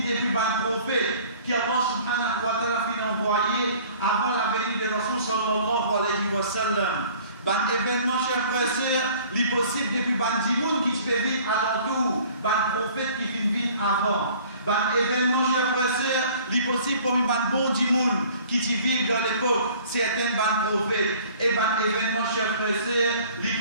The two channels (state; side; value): inverted; both; correlation -0.51